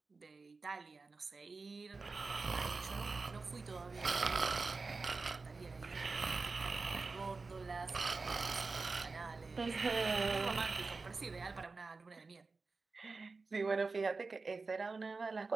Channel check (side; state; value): left; quieter; 4.1 dB